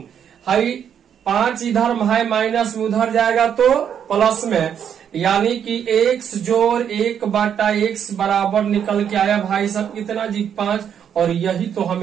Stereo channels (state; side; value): quieter; left; 8.5 dB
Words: हई 5 इधर है, माइनस में उधर जाएगा तो प्लस में, यानी कि x जोड़ 1 बटा x बराबर निकल के आया भाई साहब कितना जी 5। और यही तो